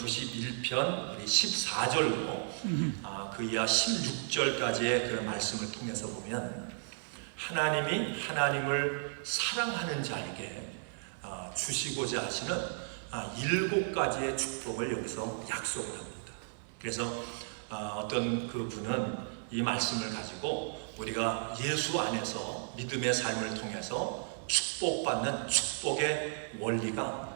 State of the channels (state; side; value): silent; left; 55 dB below the other